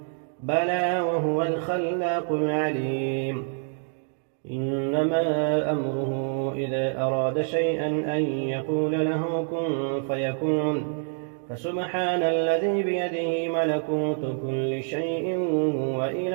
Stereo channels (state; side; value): silent; left; 61 dB below the other